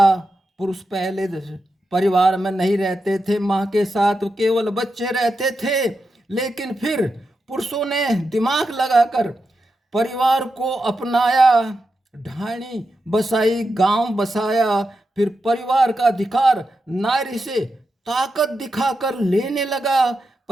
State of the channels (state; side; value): normal; both; correlation 0.88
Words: पुरुष पहले परिवार में नहीं रहते थे, माँ के साथ केवल बच्चे रहते थे, लेकिन फिर पुरुषों ने दिमाग लगाकर परिवार को अपनाया, ढाणी बसाई, गांव बसाया। फिर परिवार का अधिकार नारी से ताकत दिखाकर लेने लगा।